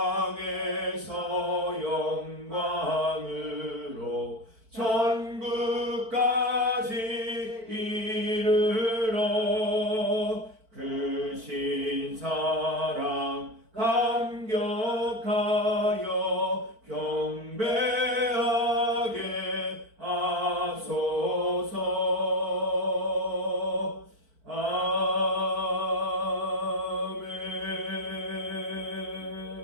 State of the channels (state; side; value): late; left; 4.5 ms